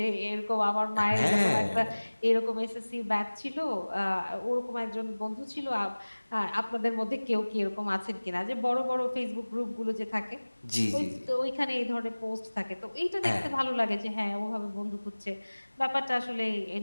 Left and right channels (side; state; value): both; inverted; correlation -1.00